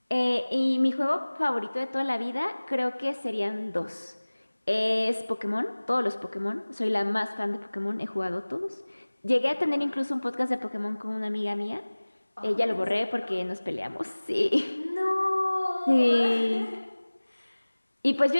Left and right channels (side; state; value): both; inverted; correlation -1.00